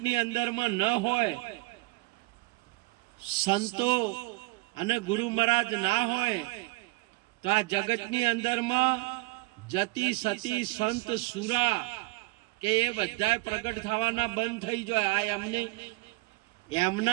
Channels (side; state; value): left; quieter; 23.8 dB